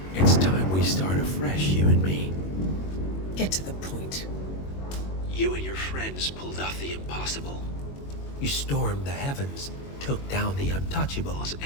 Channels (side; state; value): right; late; 21 ms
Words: It's time we start afresh, you and me. Get to the point. You and your friends pulled off the impossible. You stormed the heavens, took down the untouchables,